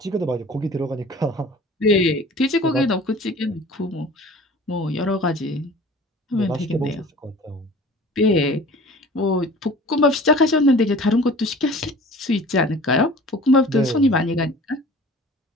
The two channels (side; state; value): both; normal; correlation 0.44